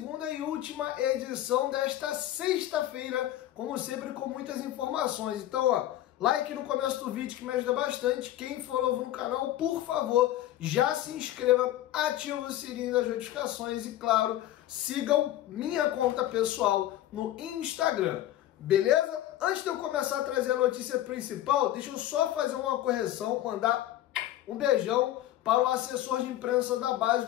e última edição desta sexta-feira, como sempre, com muitas informações. Então, ó, like no começo do vídeo que me ajuda bastante. Quem for novo no canal, por favor, já se inscreva, ative o sininho das notificações e, claro, sigam minha conta pessoal no Instagram. Beleza? Antes de eu começar a trazer a notícia principal, deixa eu só fazer uma correção, mandar um beijão para o assessor de imprensa da base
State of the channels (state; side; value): quieter; right; 13.5 dB